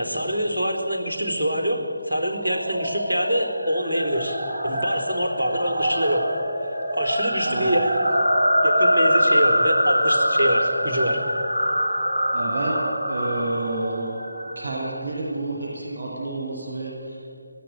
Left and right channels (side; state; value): both; inverted; correlation -0.90